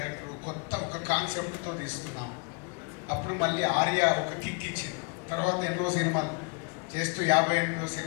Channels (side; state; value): right; quieter; 33.3 dB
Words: కొత్త ఒక కాన్సెప్ట్తో తీసుకున్నాం. అప్పుడు మళ్ళీ ఆర్య ఒక కిక్ ఇచ్చింది. తర్వాత ఎన్నో సినిమాలు చేస్తూ 58వ